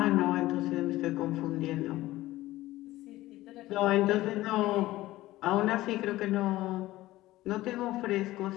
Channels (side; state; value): right; quieter; 16.8 dB